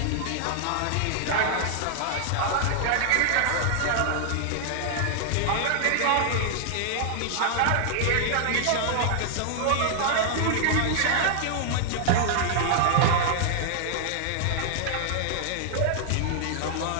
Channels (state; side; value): different; both; correlation -0.01